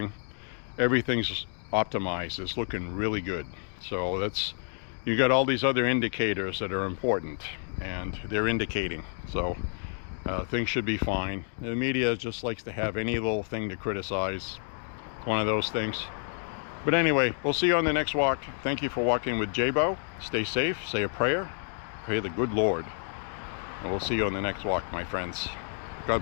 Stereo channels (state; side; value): silent; right; 55 dB below the other